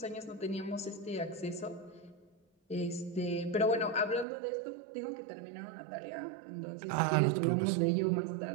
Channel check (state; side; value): drops out; left; at 4.2 s